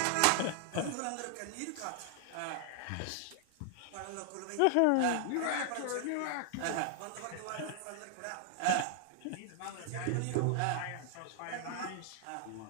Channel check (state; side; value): different; both; correlation 0.00